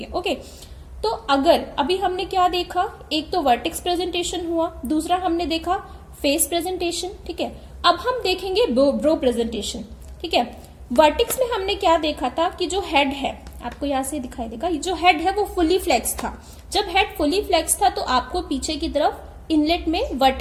okay. तो अगर अभी हमने क्या देखा, एक तो वर्टिक्स प्रेजेंटेशन हुआ, दूसरा हमने देखा फेस प्रेजेंटेशन, ठीक है। अब हम देखेंगे ब्रो प्रेजेंटेशन, ठीक है। वर्टिक्स में हमने क्या देखा था कि जो हेड है, आपको यहां से दिखाई देगा, जो हेड है वो फुली फ्लेक्स था। जब हेड फुली फ्लेक्स था तो आपको पीछे की तरफ इनलेट में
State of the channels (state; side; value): identical; both; correlation 1.00